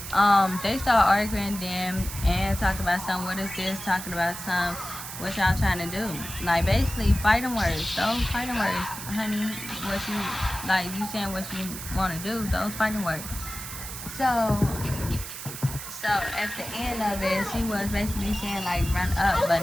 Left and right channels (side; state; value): right; noise; hiss, 9 dB below the sound